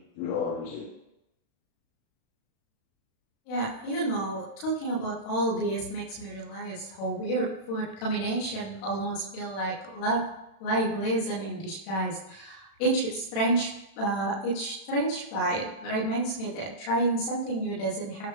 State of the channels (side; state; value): right; late; 36 ms